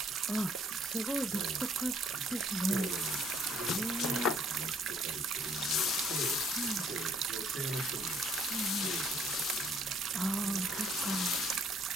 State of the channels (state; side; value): normal; both; correlation 0.63